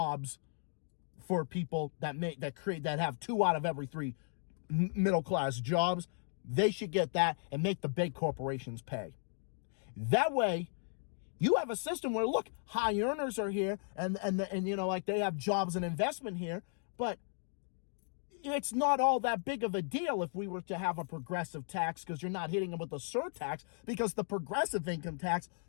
for people that have 2 out of every 3 middle-class jobs. They should get that and make the big corporations pay. That way, you have a system where, look, high earners are here and like they have jobs and investment here, but it's not all that big of a deal if we were to have a progressive tax, because you're not hitting them with a surtax, because the progressive income tax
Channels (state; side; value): silent; right; 54 dB below the other